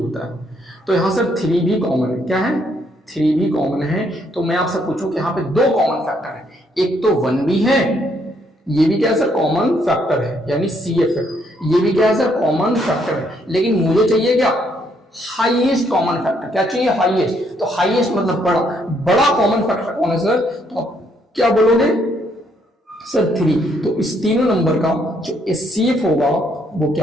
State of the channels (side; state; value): both; normal; correlation 0.71